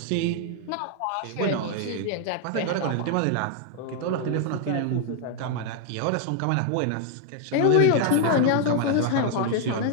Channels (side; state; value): both; different; correlation 0.00